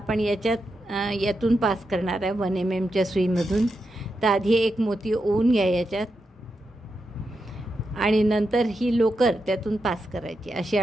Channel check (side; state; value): both; normal; correlation 0.86